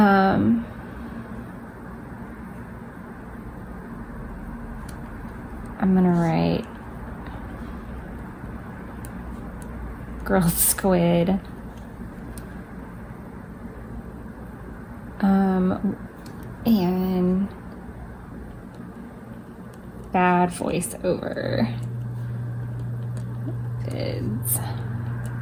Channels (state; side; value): identical; both; correlation 1.00